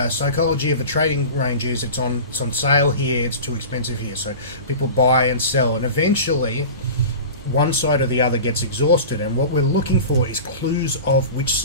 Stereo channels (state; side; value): inverted; both; correlation -0.34